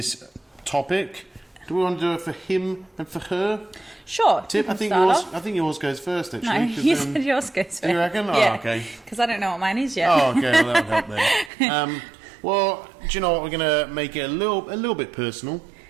topic, do we want to do it for him and for her? Sure. Tip. I think yours goes first. Actually, no, you said yours goes first. Do you reckon? Yeah, oh, okay. Because I don't know what mine is yet. Oh, okay. Well, that would help then. Well, do you know what? We're gonna make it a little bit personal,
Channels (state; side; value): drops out; left; at 11.5 s